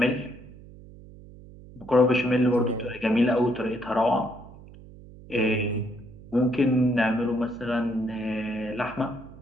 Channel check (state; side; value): noise; right; hum, 19 dB below the sound